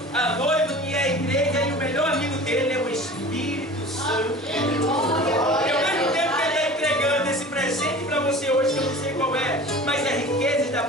a noiva que é a igreja, e o melhor amigo dele é o Espírito Santo. E ao mesmo tempo que ele está entregando esse presente para você hoje, que eu não sei qual é, mas é riqueza da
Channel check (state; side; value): normal; both; correlation 0.39